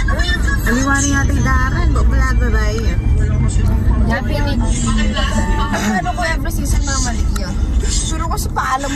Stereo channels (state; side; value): identical; both; correlation 1.00